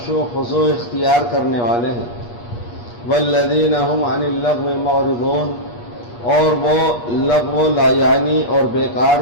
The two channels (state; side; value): late; right; 8.4 ms